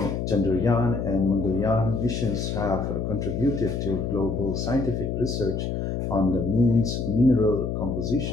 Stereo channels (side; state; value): left; noise; hum, 2 dB below the sound